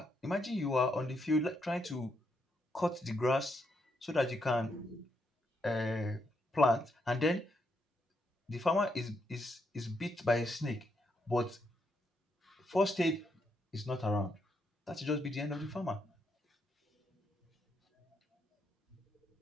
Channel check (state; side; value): normal; both; correlation 0.78